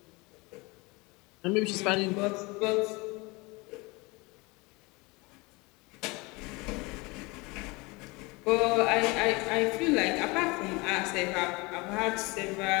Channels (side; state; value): right; quieter; 25.4 dB